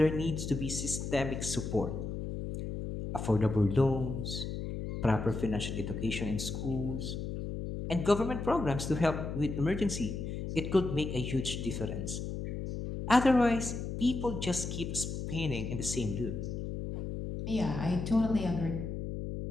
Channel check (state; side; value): noise; left; hum, 5 dB below the sound